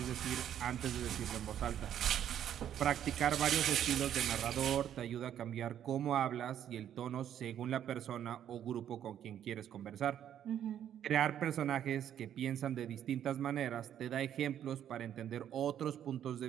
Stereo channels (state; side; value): quieter; left; 10.2 dB